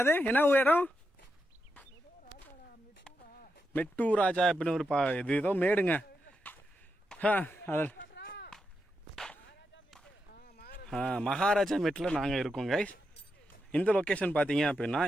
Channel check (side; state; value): both; normal; correlation 0.86